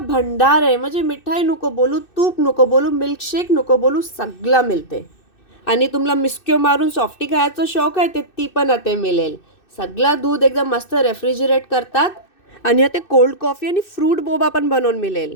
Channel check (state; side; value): late; right; 2.6 ms